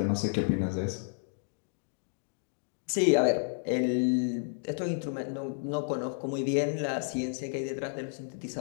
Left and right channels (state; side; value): silent; right; digital silence